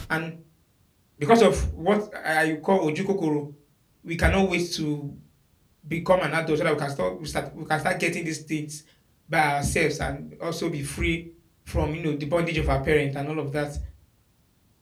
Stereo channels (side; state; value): both; identical; correlation 1.00